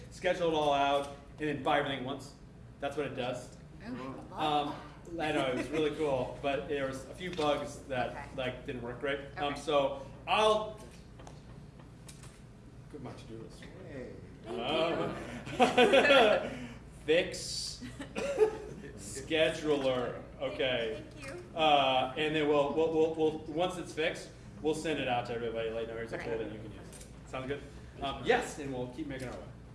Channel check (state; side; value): identical; both; correlation 1.00